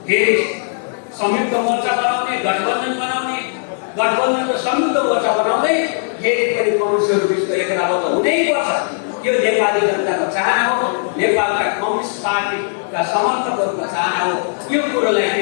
फेरि संयुक्त मोर्चा बनाउने, गठबन्धन बनाउने, गठबन्धन र संयुक्त मोर्चा बनाउँदै फेरि पनि कम्युनिस्टहरू बिचको एकताबद्ध हुनैपर्छ। यो नेपाली जनताको चाहना हो, नेपालका कम्युनिस्ट पार्टीका समर्थकहरूको चाहना हो। यो कुरोलाई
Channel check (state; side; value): silent; right; digital silence